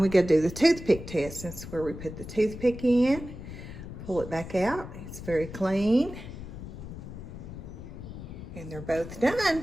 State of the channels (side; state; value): left; noise; rumble, 11 dB below the sound